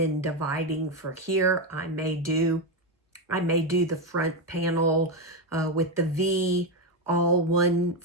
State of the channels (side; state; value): both; normal; correlation 0.09